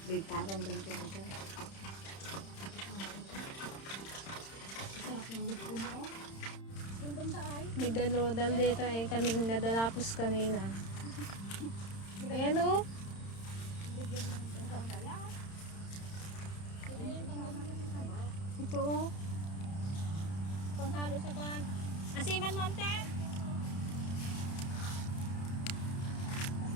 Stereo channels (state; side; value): late; right; 31 ms